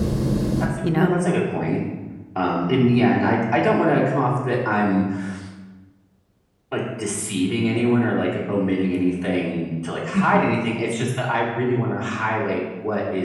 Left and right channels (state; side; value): identical; both; correlation 1.00